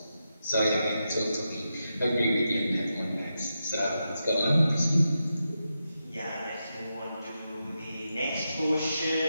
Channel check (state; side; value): inverted; both; correlation -0.88